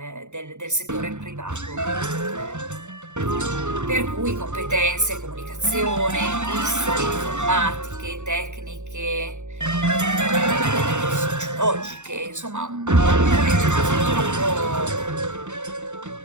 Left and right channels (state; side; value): late; left; 0.84 ms